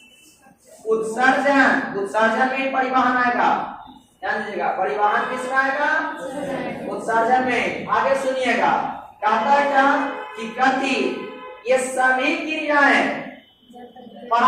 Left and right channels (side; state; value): both; identical; correlation 1.00